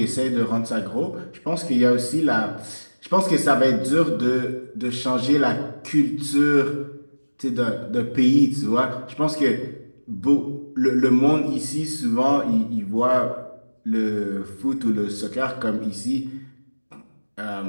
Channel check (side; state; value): both; inverted; correlation -1.00